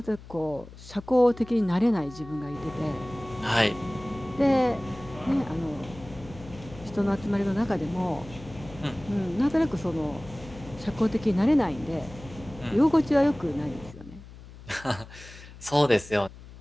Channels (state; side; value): noise; left; hum, 17 dB below the sound